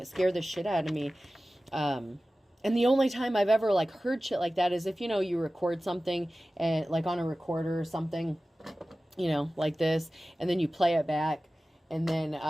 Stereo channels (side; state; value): both; normal; correlation 0.96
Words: it scared the shit out of me. And the only time I've ever, like, heard shit like that is if, you know, you record something, and like on a recorder or something, you know, like this, and then you play it back, and then